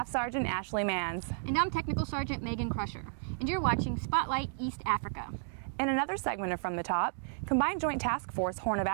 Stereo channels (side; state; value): left; silent; digital silence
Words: Sergeant Ashley Manz. And I'm Technical Sergeant Megan Crusher. And you're watching Spotlight East Africa. In another segment of From the Top, Combined Joint Task Force Horn of